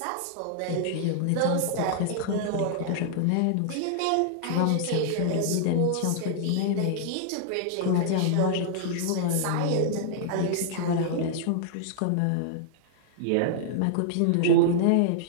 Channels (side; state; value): both; different; correlation -0.01